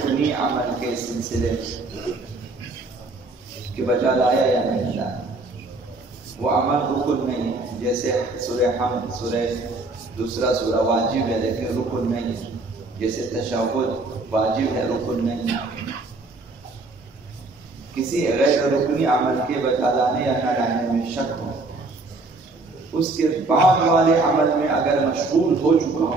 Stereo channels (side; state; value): left; quieter; 3.2 dB